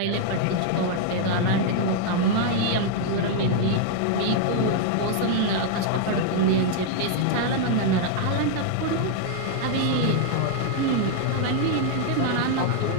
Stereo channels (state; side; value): different; both; correlation 0.00